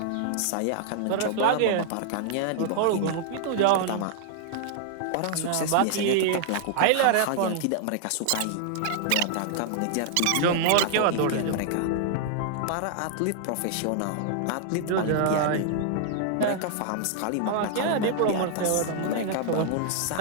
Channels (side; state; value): both; different; correlation -0.01